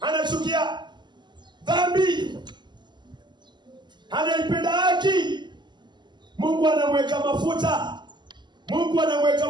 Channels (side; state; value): left; late; 0.21 ms